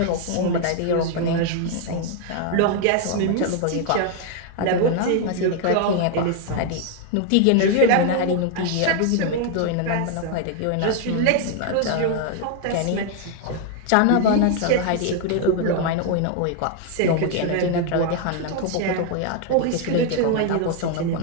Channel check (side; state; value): both; different; correlation 0.00